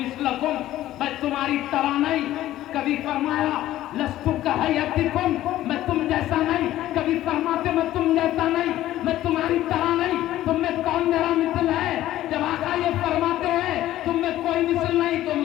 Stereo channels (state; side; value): quieter; right; 14.1 dB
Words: میں تمہاری طرح نہیں، کبھی فرمایا لست کہیتکم، میں تم جیسا نہیں، کبھی فرماتے میں تم جیسا نہیں، میں تمہاری طرح نہیں، تم میں کون میرا مثل ہے؟ جب آقا یہ فرماتے ہیں تم میں کوئی مثل نہیں، تو